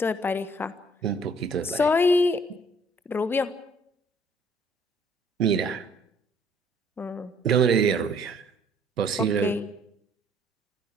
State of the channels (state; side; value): normal; both; correlation 0.60